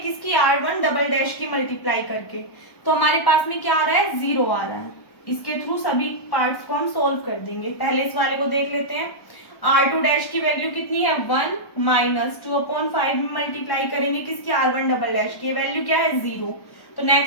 किसकी, r1 डबल डैश की मल्टीप्लाई करके, तो हमारे पास में क्या आ रहा है, 0 आ रहा है। इसके थ्रू सभी पार्ट्स को हम सोल्व कर देंगे। पहले इस वाले को देख लेते हैं, r2 डैश की वैल्यू कितनी है, 1 माइनस 2/5 में मल्टीप्लाई करेंगे किसकी, r1 डबल डैश की वैल्यू क्या है, 0। तो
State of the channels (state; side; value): late; right; 1.1 ms